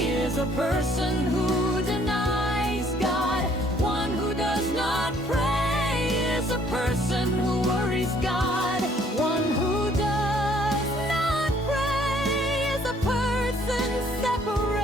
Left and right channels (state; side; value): normal; both; correlation 0.62